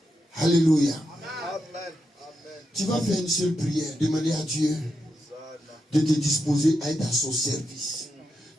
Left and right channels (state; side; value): normal; both; correlation 0.85